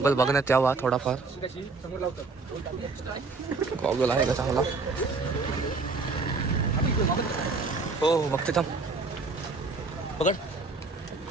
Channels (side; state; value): left; quieter; 4.0 dB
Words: बघण्यात यावा थोडाफार. गॉगल आहे का चांगला? हो बघते थांब. पकड.